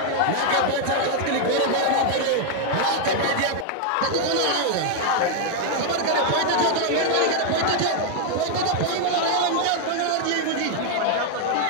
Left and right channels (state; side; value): different; both; correlation 0.00